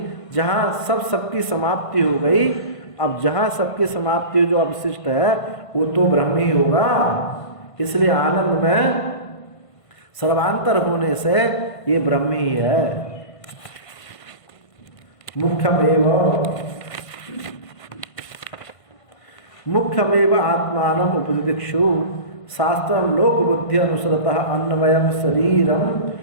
जहाँ सबकी समाप्ति हो गई, अब जहाँ सबकी समाप्ति जो अवशिष्ट है वो तो ब्रह्म ही होगा। इसलिए आनंद में सर्वांतर होने से ये ब्रह्म ही है। मुख्यमेव आत्मानम उपदिक्षु शास्त्रम लोक बुद्धि अनुसरतः अन्वयम शरीरम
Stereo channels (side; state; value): right; late; 1.5 ms